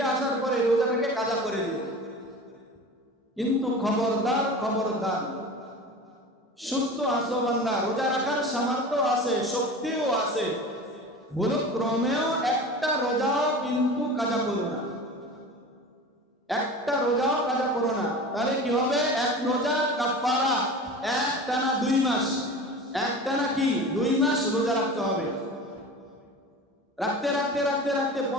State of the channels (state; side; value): normal; both; correlation 0.35